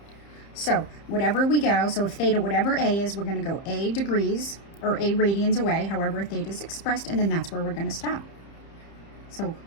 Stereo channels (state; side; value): late; right; 30 ms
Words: So whatever we go, so if theta, whatever a is, we're going to go a degrees or a radians away, however theta is expressed, and then that's where we're going to stop. So